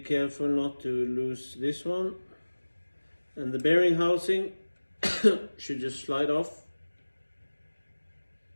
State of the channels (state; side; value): inverted; both; correlation -1.00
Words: not to lose this one. And the bearing housing should just slide off.